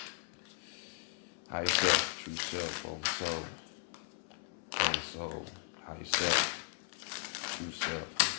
High yourself, true self, over soul, high yourself, true self,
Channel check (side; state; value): right; silent; 53 dB below the other